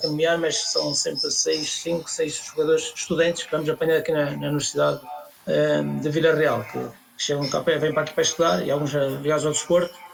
caminhar, mas são sempre 5, 6 jogadores estudantes que vamos apanhar aqui na Universidade de Vila Real, que chegam cá, vêm para aqui para estudar, e alguns ligados ao desporto,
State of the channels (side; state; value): both; identical; correlation 1.00